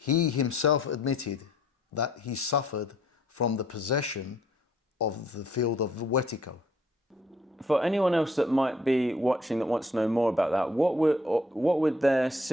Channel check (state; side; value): normal; both; correlation 0.63